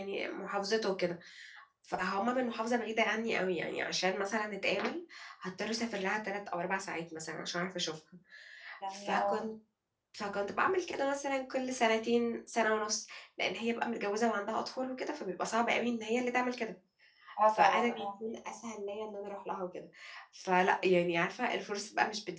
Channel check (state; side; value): identical; both; correlation 1.00